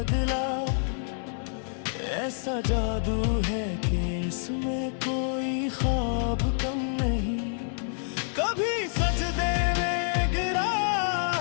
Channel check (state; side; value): silent; right; digital silence